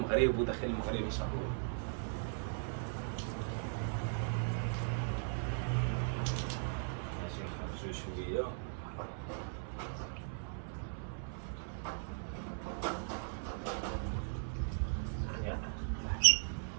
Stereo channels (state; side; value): silent; left; 52 dB below the other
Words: وداخل المغرب ان شاء الله. ماشي نخرجوا شويه.